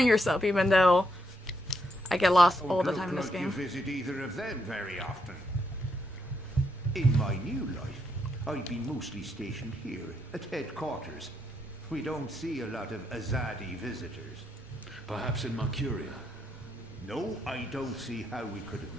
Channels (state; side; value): normal; both; correlation 0.78